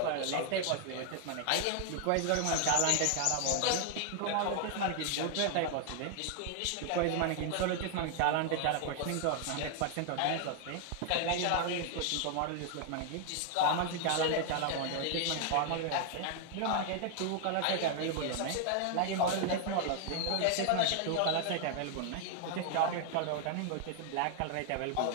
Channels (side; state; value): both; different; correlation 0.00